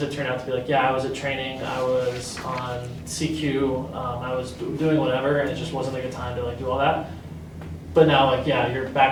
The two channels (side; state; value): both; identical; correlation 1.00